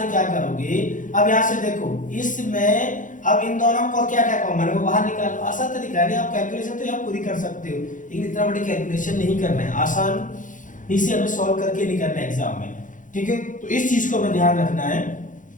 क्या करोगे, अब यहाँ से देखो इसमें अब इन दोनों को क्या क्या कॉमन है वो बाहर निकालो। आसान तरीका है, आप कैलकुलेशन तो आप पूरी कर सकते हो लेकिन इतना बड़ी कैलकुलेशन नहीं करना है, आसान इसे हमें सॉल्व करके नहीं करना है एग्जाम में। ठीक है, तो इस चीज को हमें ध्यान रखना है।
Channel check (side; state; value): right; late; 0.38 ms